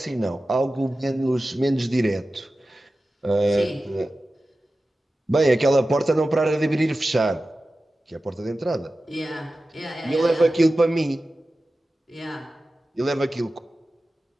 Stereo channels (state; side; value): normal; both; correlation 0.94